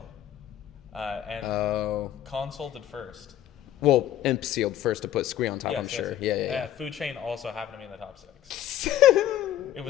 And Oh. Console did first. Well, Imp sealed first to put Squee on top, I'm sure. Yeah. Food Chain also happened to be in the top 6. It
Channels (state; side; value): quieter; right; 11.7 dB